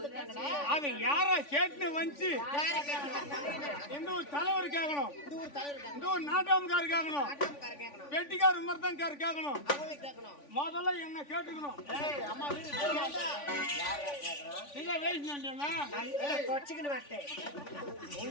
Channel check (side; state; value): right; late; 3.5 ms